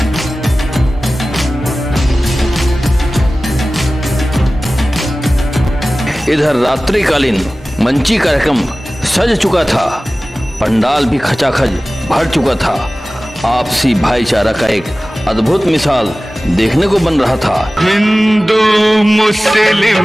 इधर रात्रिकालीन मंची कार्यक्रम सज चुका था। पंडाल भी खचाखच भर चुका था। आपसी भाईचारा का एक अद्भुत मिसाल देखने को बन रहा था। हिंदू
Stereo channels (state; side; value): normal; both; correlation 0.97